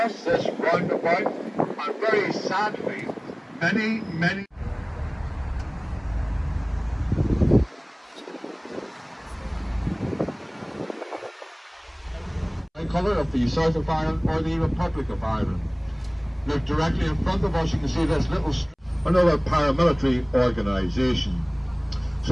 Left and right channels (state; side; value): identical; both; correlation 1.00